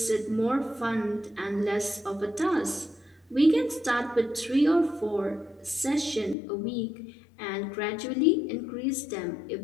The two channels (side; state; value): right; drops out; at 6.4 s